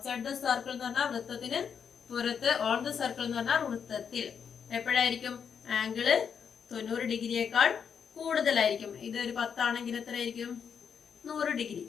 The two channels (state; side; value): quieter; right; 7.1 dB